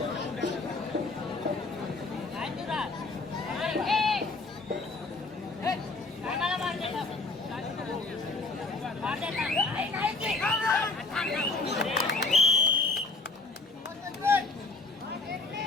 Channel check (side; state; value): right; quieter; 3.5 dB